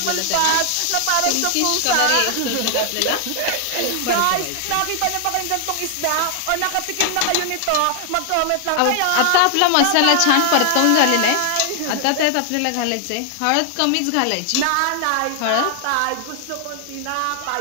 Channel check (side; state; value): both; different; correlation 0.00